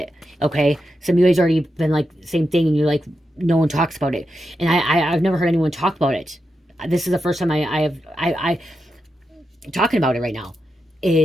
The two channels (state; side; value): normal; both; correlation 0.87